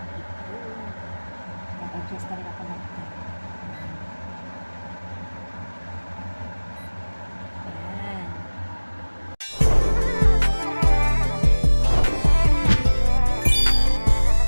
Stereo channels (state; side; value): inverted; both; correlation -1.00